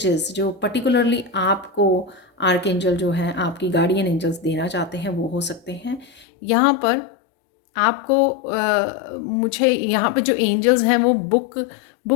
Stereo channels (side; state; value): right; drops out; at 6.2 s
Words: जो पर्टिकुलरली आपको आर्कएंजल जो है, आपकी गार्डियन एंजल्स देना चाहते हैं, वो हो सकते हैं। यहाँ पर आपको मुझे यहाँ पर जो एंजल्स हैं वो